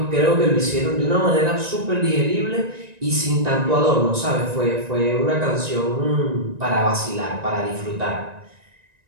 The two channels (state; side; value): late; left; 1.9 ms